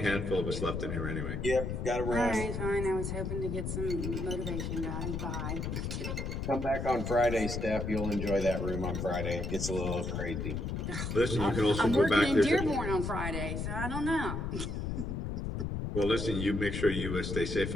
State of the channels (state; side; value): noise; left; rumble, 3 dB below the sound